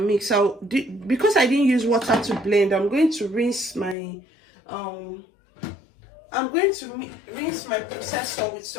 Because I didn't use water to blend, I'm going to rinse my rinse my processor with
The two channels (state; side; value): drops out; right; at 4.0 s